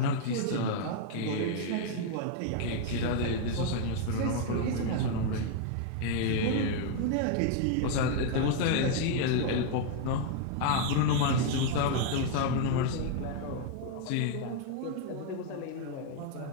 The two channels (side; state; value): both; different; correlation 0.00